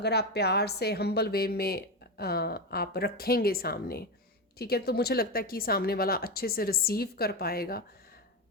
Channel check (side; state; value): both; normal; correlation 0.15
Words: आप प्यार से हम्बल वे में आप रखेंगे सामने, ठीक है, तो मुझे लगता है कि सामने वाला अच्छे से रिसीव कर पाएगा।